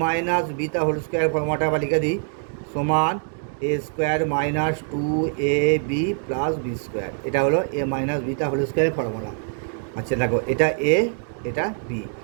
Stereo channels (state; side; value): silent; left; 55 dB below the other